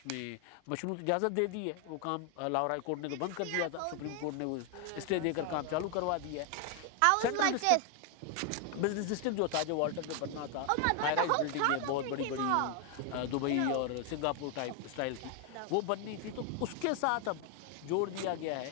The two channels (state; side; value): different; both; correlation 0.01